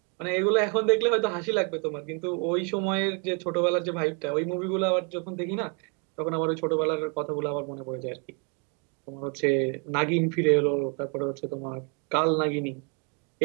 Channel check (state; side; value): quieter; left; 36.0 dB